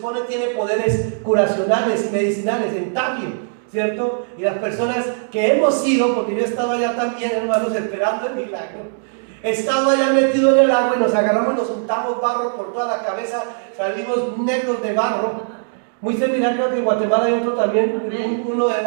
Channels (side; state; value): left; silent; digital silence